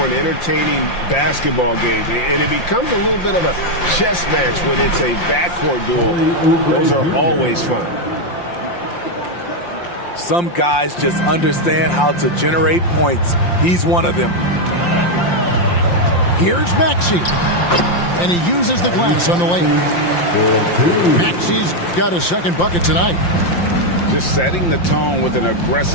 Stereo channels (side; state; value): right; late; 5.7 ms